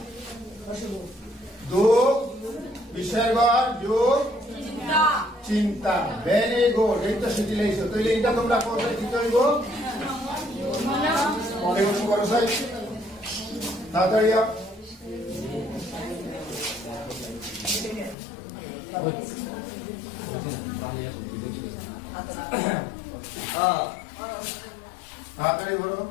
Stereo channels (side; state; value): right; drops out; at 18.2 s